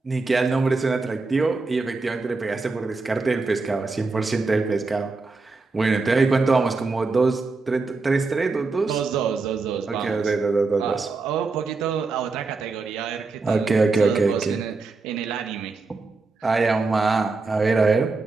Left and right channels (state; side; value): quieter; left; 3.9 dB